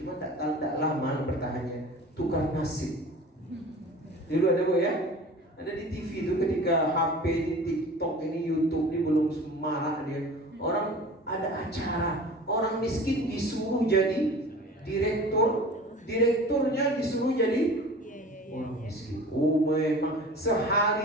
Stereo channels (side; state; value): both; normal; correlation 0.40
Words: cuma tak lama bertahannya, tukar nasib. Dulu ada, Bu, ya? Ada di TV itu ketika HP ini, TikTok ini, YouTube ini belum semarak dia. Orang ada acara, orang miskin disuruh jadi direktur, direkturnya disuruh jadi orang miskin. Oh, memang